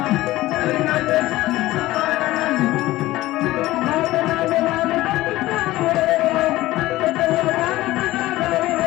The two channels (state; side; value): quieter; right; 17.1 dB